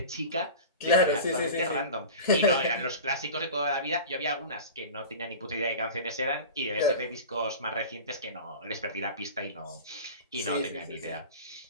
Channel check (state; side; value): inverted; both; correlation -0.33